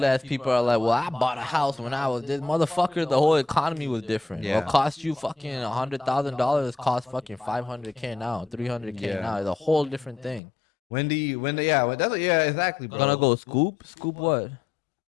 ass people are like, well, I bought a house when I was this motherfucker. The whole economy was different. Yeah. What cost you fucking $100,000 cost fucking $500K now, $300K Yeah. now. It's a whole different thing. yeah, exactly, bro. Gonna go scoop what?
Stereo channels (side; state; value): right; drops out; at 10.4 s